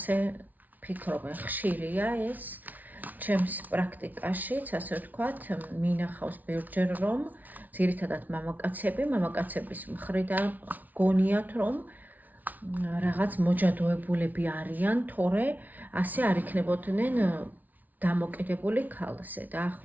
ფიქრობენ, ხშირია ეს ჩემს პრაქტიკაშიც, ასე ვთქვათ, მინახავს ბევრჯერ, რომ ძირითადად მამაკაცების მხრიდან გონიათ, რომ რაღაც მოჯადოებულები არიან, თორე ასე არ იქნებოდნენ დამოკიდებული ქალზე.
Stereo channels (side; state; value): left; late; 0.078 ms